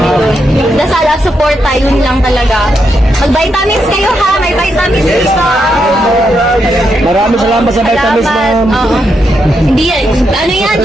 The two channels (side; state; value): both; normal; correlation 0.82